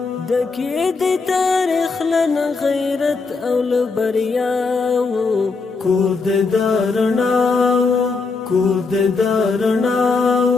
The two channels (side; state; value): right; quieter; 4.3 dB